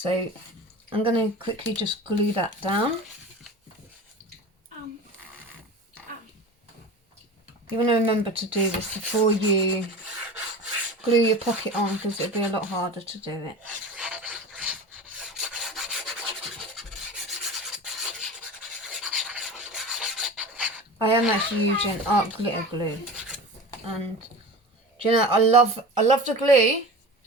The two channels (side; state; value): both; normal; correlation 0.33